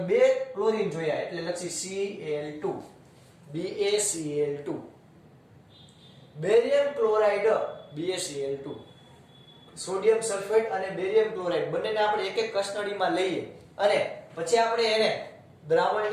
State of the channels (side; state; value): both; identical; correlation 1.00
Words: 2 ક્લોરીન જોયા એટલે લખી Cl2. BaCl2. Barium chloride BaCl2. Sodium sulphate અને બેરિયમ ક્લોરાઇડ બંનેને આપણે એક એક કસનળીમાં લઈએ અને પછી આપણે એને